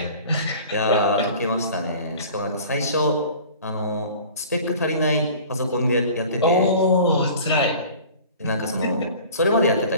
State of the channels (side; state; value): both; inverted; correlation -0.44